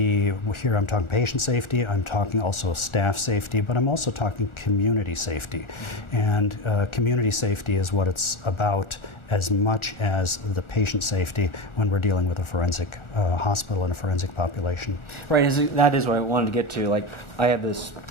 here I'm talking patient safety, I'm talking also staff safety, but I'm also talking community safety. Mm-hmm. And community safety is what it's about as much as the patient safety when we're dealing with a forensic hospital and a forensic population. Right, that is what I wanted to get to. Like, I have this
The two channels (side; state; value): right; late; 1.4 ms